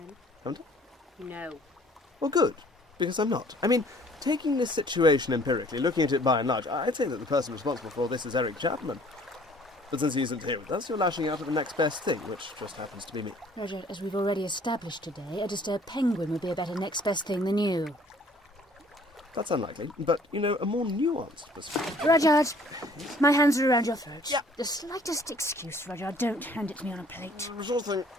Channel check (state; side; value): normal; both; correlation 0.56